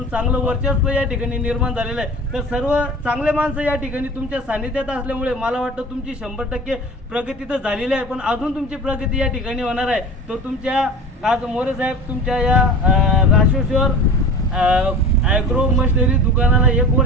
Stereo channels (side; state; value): both; normal; correlation 0.37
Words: चांगलं वर्चस्व या ठिकाणी निर्माण झालेलं आहे। तर सर्व चांगले माणसं या ठिकाणी तुमच्या सानिध्यात असल्यामुळे मला वाटतं तुमची 100% प्रगती तर झालेली आहे, पण अजून तुमची प्रगती या ठिकाणी होणार आहे। तर तुमच्या आज मोरे साहेब तुमच्या या राष्ट्रेश्वर ॲग्रो मशिनरी दुकानाला 1